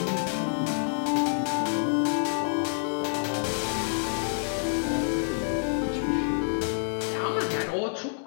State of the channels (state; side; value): silent; right; digital silence